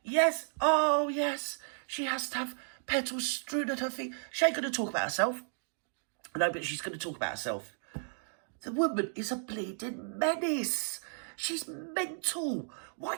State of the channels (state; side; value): silent; left; digital silence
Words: yes, oh yes, she has to have petals strewn at her feet. She ain't going to talk about herself. No, but she's going to talk about herself. The woman is a bleeding menace. She's mental. Why